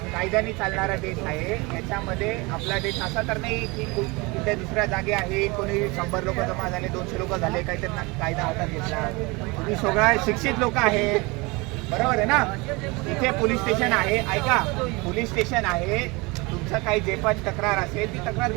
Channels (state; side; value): quieter; left; 25.6 dB